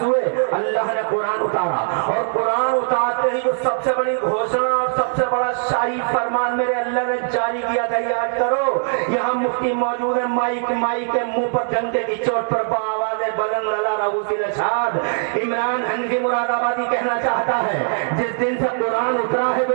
ہوئے، اللہ نے قرآن اتارا، اور قرآن اتارتے ہی جو سب سے بڑی گھوشنا اور سب سے بڑا شاہی فرمان میرے اللہ نے جاری کیا تھا، یاد کرو، یہاں مفتی موجود ہے، مائی کے منہ پر ڈنڈے کی چوٹ پر بآواز بلند اللہ رؤوسی الاشہاد عمران حنفی مراد آبادی کہنا چاہتا ہے، جس دن سے قرآن اترا ہے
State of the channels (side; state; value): left; silent; digital silence